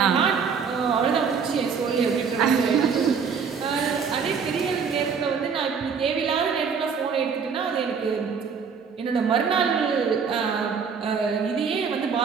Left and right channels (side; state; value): left; quieter; 6.1 dB